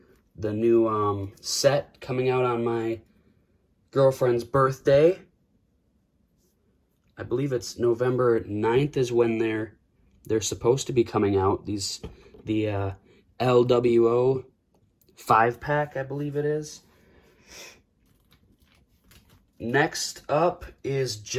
The new set coming out on my girlfriend's birthday. I believe it's November 9th is when they're supposed to be coming out. The LWO 5-pack, I believe it is. Next up is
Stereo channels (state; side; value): identical; both; correlation 1.00